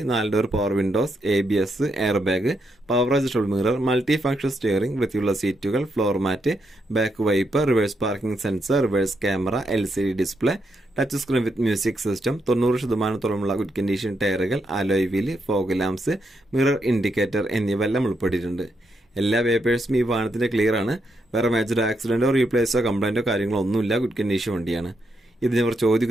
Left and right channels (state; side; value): normal; both; correlation 0.80